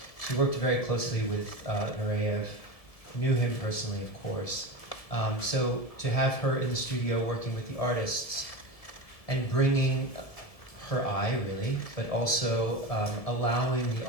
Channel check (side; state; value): right; late; 1.7 ms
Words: she worked very closely with Nureyev, knew him personally, of course. So to have her in the studio working with the artists and bringing her eye, really, but also allowing the